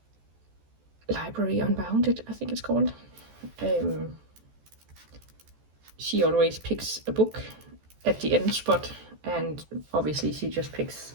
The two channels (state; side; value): late; left; 14 ms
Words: Library Unbounded, I think it's called. She always picks a book at the end spot, and obviously she just picks